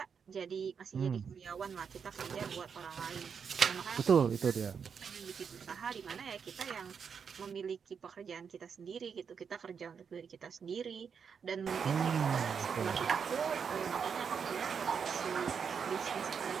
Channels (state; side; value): quieter; left; 6.6 dB